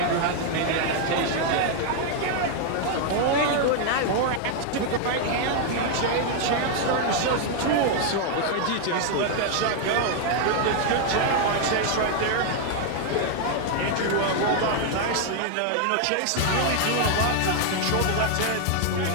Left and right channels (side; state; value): both; different; correlation 0.00